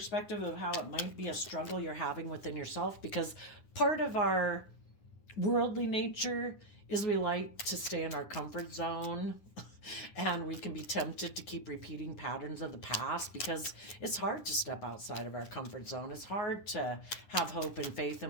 of how it might be a struggle you're having within yourself, because part of our worldly nature is we like to stay in our comfort zone and we can be tempted to keep repeating patterns of the past because it's hard to step outside of our comfort zone. It's hard to have hope and faith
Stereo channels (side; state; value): right; late; 9.4 ms